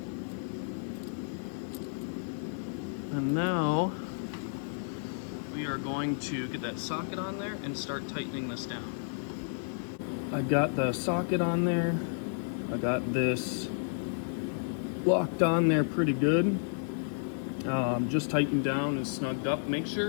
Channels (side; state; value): right; silent; 57 dB below the other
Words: And now we are going to get that socket on there and start tightening this down. I got the socket on there. I got this locked on there pretty good. Just tightened down and snugged up. Make